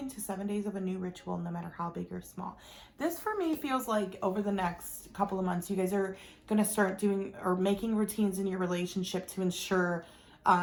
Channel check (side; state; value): both; identical; correlation 1.00